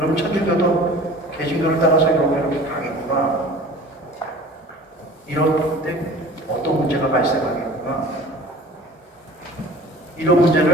천주교도 개신교를 따라서 이렇게 가겠구나. 이럴 때 어떤 문제가 발생하겠구나. 이런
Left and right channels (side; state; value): both; normal; correlation 0.43